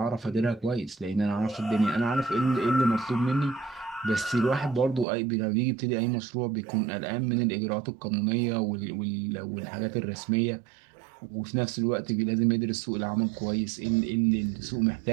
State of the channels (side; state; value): left; drops out; at 5.1 s